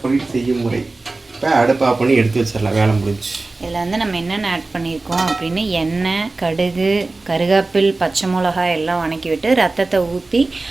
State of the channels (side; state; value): left; quieter; 3.4 dB